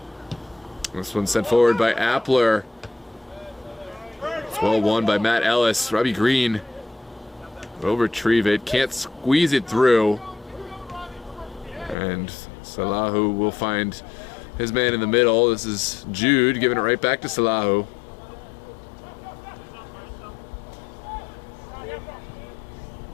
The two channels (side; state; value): right; drops out; at 12.0 s